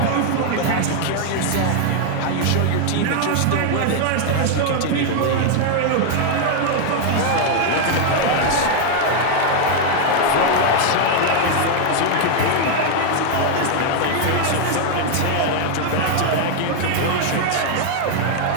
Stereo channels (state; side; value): different; both; correlation 0.00